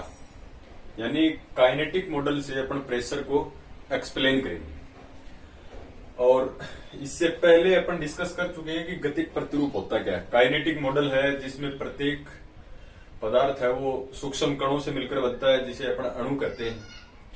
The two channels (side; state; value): both; identical; correlation 1.00